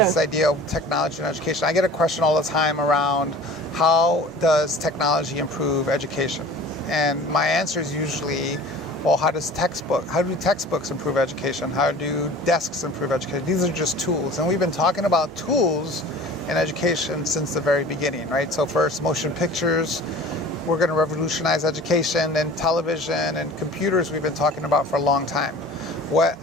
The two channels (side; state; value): both; normal; correlation 0.42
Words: This idea of technology and education. I get a question all the time around how does technology improve education? And my answer is usually, well, how do textbooks improve education? How do desks improve education? These are just tools. And we've been talking about tools in education since the very beginning, right? So first, motion pictures. We're going to revolutionize education, and television and computers we've been talking about for a long time. What